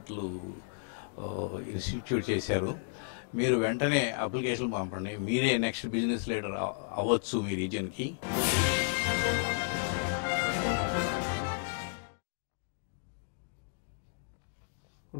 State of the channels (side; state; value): right; silent; digital silence